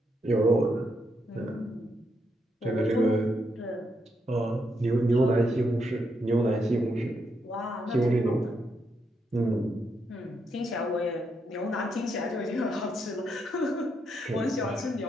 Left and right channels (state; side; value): normal; both; correlation 0.79